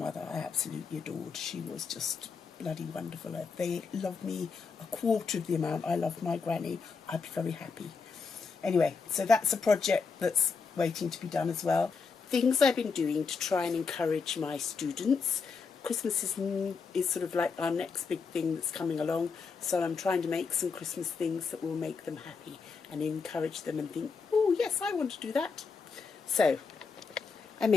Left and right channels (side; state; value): right; quieter; 5.1 dB